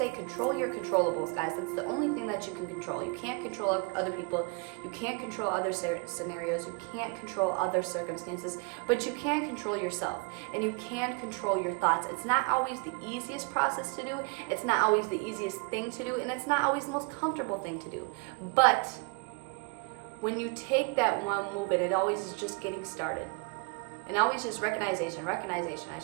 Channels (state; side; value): quieter; left; 33.1 dB